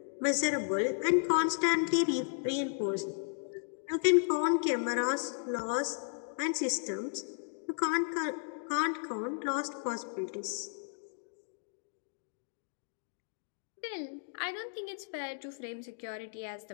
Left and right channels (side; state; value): right; silent; digital silence